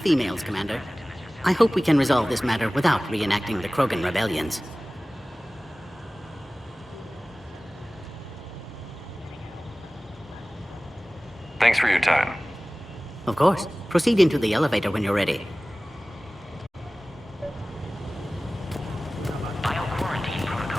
Commander. I hope we can resolve this matter without reenacting the Krogan rebellions. Thanks for your time. Of course. Proceed into the elevator when you're ready. Bio-quarantine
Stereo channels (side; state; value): both; normal; correlation 0.98